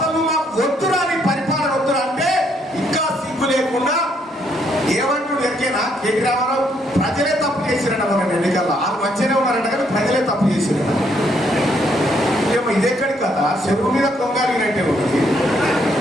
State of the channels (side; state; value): both; normal; correlation 0.71